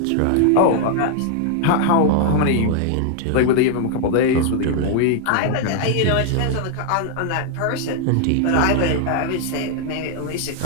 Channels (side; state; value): both; different; correlation 0.00